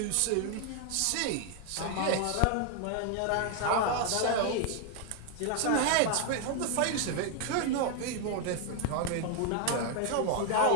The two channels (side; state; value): both; different; correlation 0.01